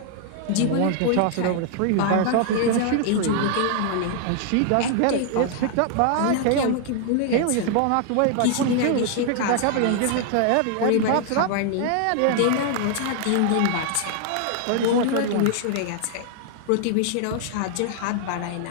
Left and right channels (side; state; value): both; different; correlation 0.00